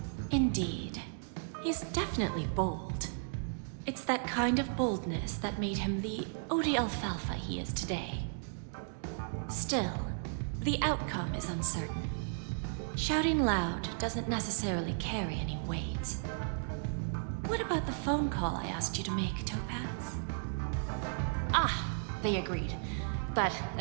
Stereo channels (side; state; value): left; silent; digital silence